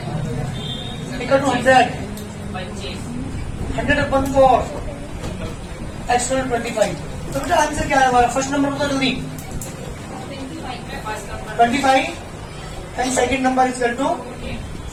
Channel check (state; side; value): identical; both; correlation 1.00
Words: equal to 100. 100/4 external 25। तो बेटा आंसर क्या है हमारा, फर्स्ट नंबर बता जल्दी, 25 and second number is equal to